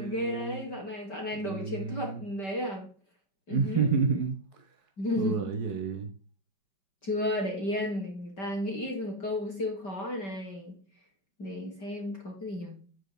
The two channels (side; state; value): right; late; 5.2 ms